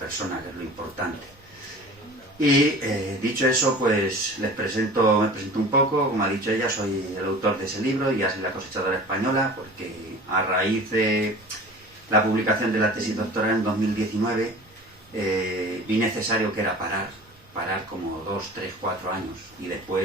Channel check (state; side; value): normal; both; correlation 0.41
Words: que es lo importante. Y dicho eso, pues me presento un poco. Como ha dicho ella, soy el autor de ese libro, Iasa y la cosechadora española, porque a raíz de la publicación de la tesis doctoral en 2019 vi necesario que era parar como 2, 3, 4 años y